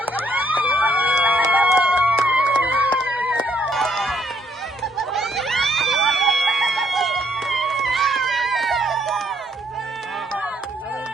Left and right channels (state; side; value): normal; both; correlation 0.69